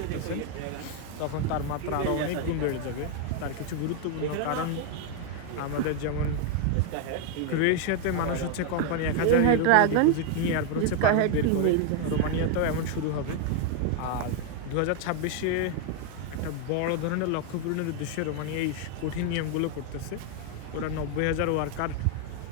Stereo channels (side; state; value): both; different; correlation 0.00